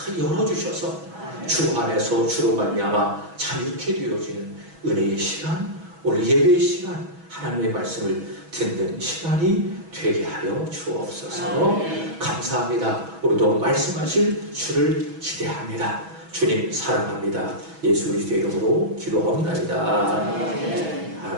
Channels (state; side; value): late; left; 6.1 ms